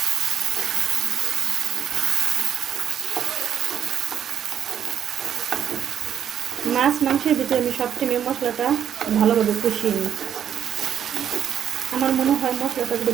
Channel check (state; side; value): quieter; left; 9.2 dB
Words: মাছ মাংসের ভিতরে আমি সবসময় মশলাটা ভালোভাবে কষিয়ে নিই। আমার মনে হয় মশলাটা যদি